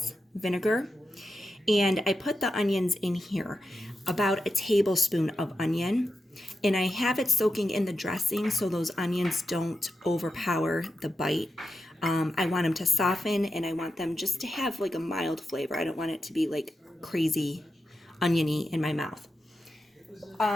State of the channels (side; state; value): both; normal; correlation 0.89